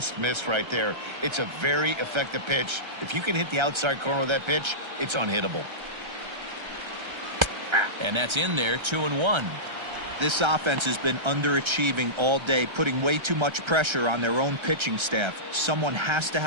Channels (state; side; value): late; left; 1.3 ms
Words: missed right there. It's a very effective pitch. If you can hit the outside corner of that pitch, it's unhittable. And that's in there, 2-1. This offense has been underachieving all day, putting way too much pressure on their own pitching staff. Someone has to